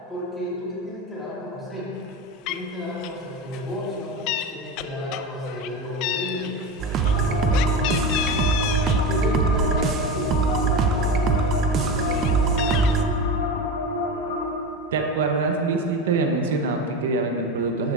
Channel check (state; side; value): normal; both; correlation 0.22